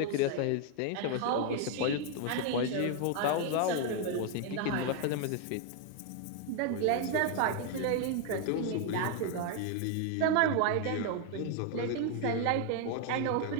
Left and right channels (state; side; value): different; both; correlation 0.01